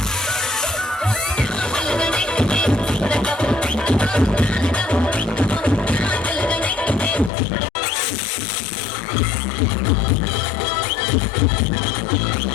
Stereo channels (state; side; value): drops out; right; at 7.3 s